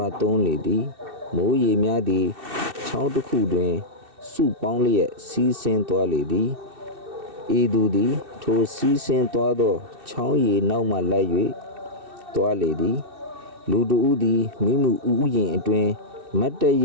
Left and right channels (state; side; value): late; left; 2.6 ms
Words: ာသွန်းလေသည်မိုးရေများသည်ချောင်းတစ်ခုတွင်စုပေါင်းလျက်စီးဆင်းသွားလေသည်ဤသူသည်ထိုစီးဆင်းသွားသောချောင်းရည်နောက်မှလိုက်၍သွားလေသည်လူတဦးသည်မိမှုဥယျာဉ်အတွင်မတ်တရ